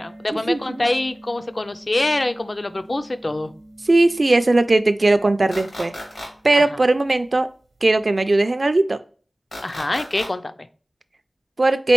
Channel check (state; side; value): normal; both; correlation 0.98